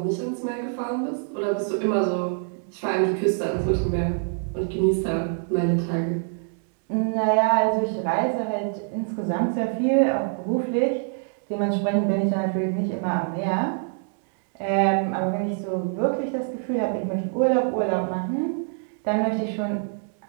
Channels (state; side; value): silent; left; 62 dB below the other